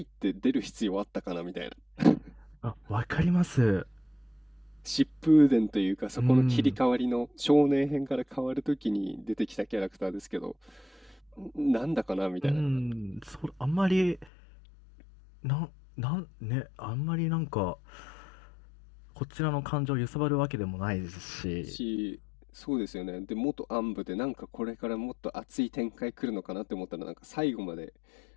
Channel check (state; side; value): drops out; right; at 14.3 s